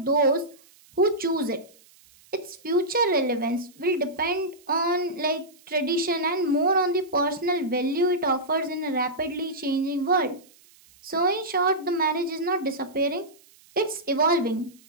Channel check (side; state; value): right; noise; hiss, 28 dB below the sound